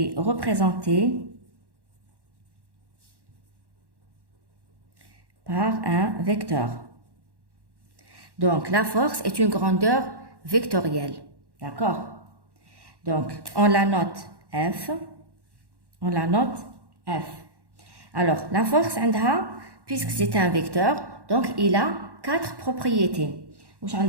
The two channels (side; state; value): left; late; 1.1 ms